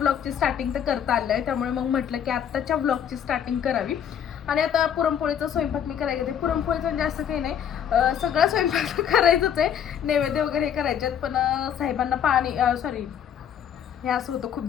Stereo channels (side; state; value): right; quieter; 8.9 dB